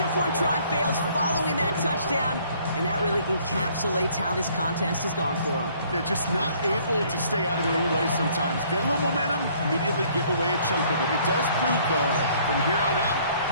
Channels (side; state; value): both; inverted; correlation -0.60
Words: try fails following that touchdown, and that really encapsulates how this contest has gone for them. They're just not able to stay out of their own way sometimes. Get a little momentum, immediately give away a chunk of it. It does prove, though, from here on out,